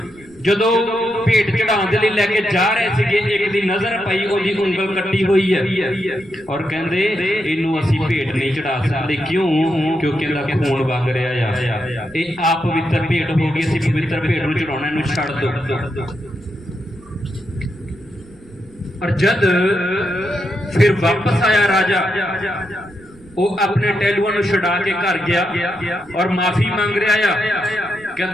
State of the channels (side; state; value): right; noise; rumble, 25 dB below the sound